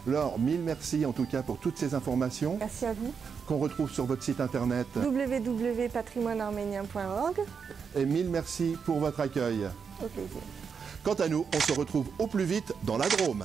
Laure, mille merci en tout cas pour toutes ces informations. Merci à vous. Qu'on retrouve sur votre site internet www.patrimoinearménien.org. Et mille merci pour votre accueil. Au plaisir. Quant à nous, on se retrouve au plus vite dans la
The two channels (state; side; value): quieter; left; 6.2 dB